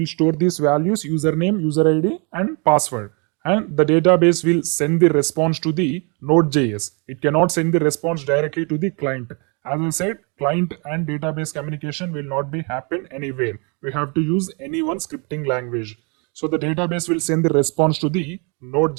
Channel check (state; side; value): quieter; left; 34.2 dB